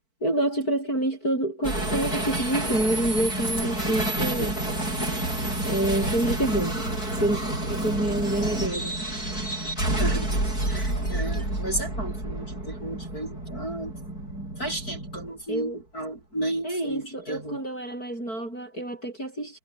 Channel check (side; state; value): right; late; 4.6 ms